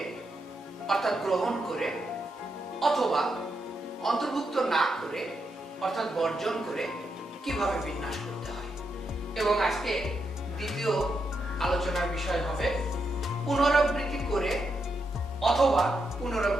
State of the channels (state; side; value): normal; both; correlation 0.83